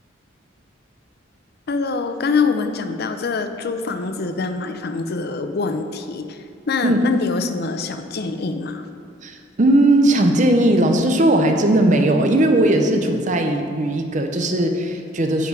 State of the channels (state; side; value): normal; both; correlation 0.58